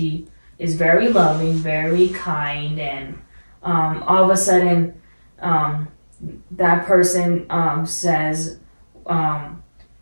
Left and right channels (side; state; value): both; inverted; correlation -1.00